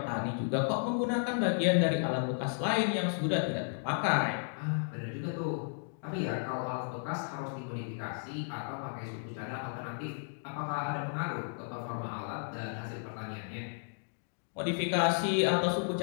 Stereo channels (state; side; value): silent; right; digital silence